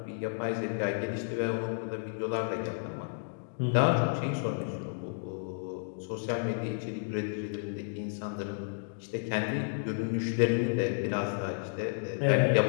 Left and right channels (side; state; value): right; silent; digital silence